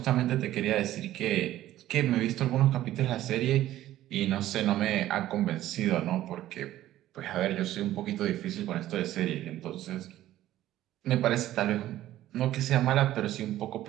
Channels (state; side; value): quieter; left; 13.9 dB